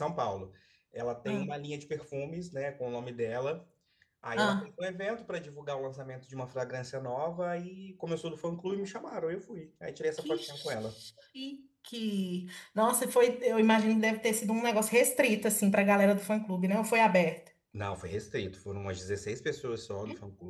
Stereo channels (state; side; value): identical; both; correlation 1.00